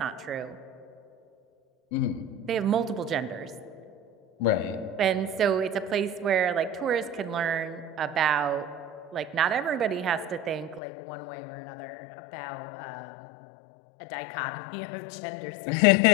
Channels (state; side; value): drops out; right; at 10.8 s